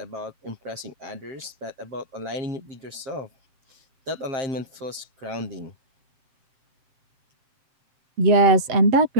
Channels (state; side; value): late; left; 7.5 ms